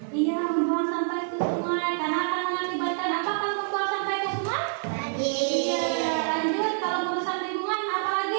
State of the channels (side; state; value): left; silent; 60 dB below the other